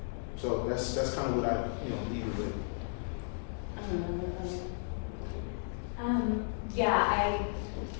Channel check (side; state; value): right; silent; digital silence